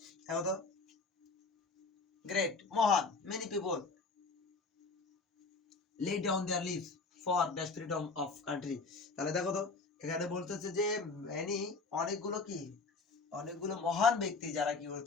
দেখো তো great, মহান, many people lay down their lives for dash freedom of country, তাহলে দেখো তো এখানে বলতেছে যে many, অনেকগুলো কি, অনেকগুলো মহান ব্যক্তি যারা কি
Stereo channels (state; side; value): quieter; right; 4.0 dB